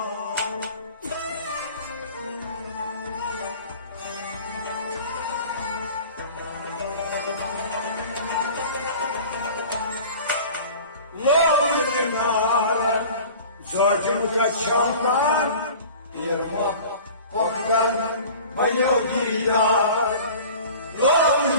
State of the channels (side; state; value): both; inverted; correlation -0.42